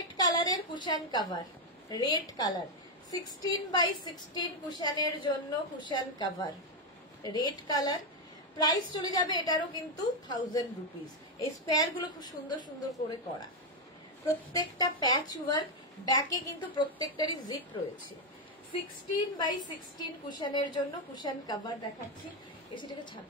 কালারের cushion cover, red colour 16x16 কুশনের জন্য cushion cover, red colour. Price চলে যাবে এটারও কিন্তু 1000 রুপিস। এই স্পেয়ার গুলো খুব সুন্দর সুন্দর করে করা, প্রত্যেকটা প্যাচ ওয়ার্ক, ব্যাকে কিন্তু প্রত্যেকটারই জিপ রয়েছে। 16x16 কুশনের জন্য কুশন কভার দেখাচ্ছি, এসিটাকে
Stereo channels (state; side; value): normal; both; correlation 0.04